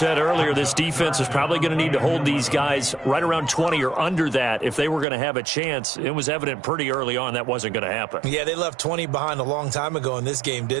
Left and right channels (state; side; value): drops out; left; at 5.1 s